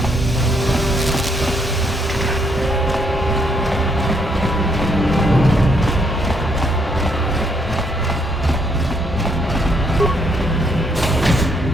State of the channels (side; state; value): both; normal; correlation 0.72